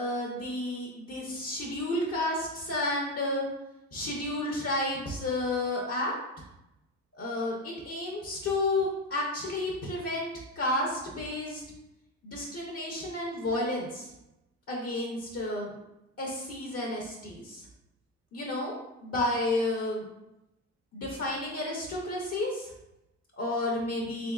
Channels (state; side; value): normal; both; correlation 0.16